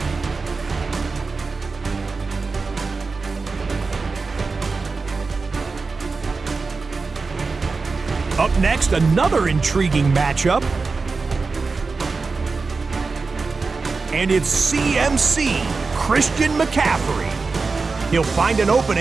Up next, another intriguing matchup. And it's CMC, Christian McCaffrey. He'll find an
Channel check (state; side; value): quieter; left; 4.2 dB